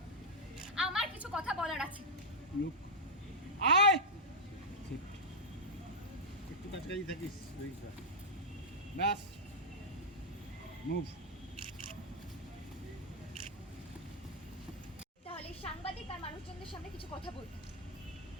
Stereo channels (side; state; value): both; normal; correlation -0.04